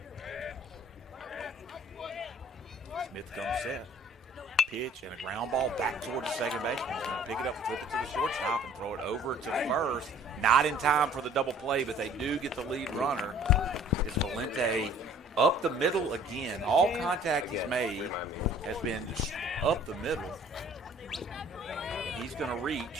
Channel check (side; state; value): both; normal; correlation 0.53